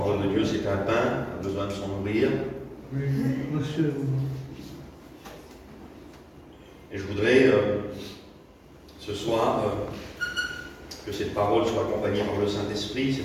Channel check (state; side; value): identical; both; correlation 1.00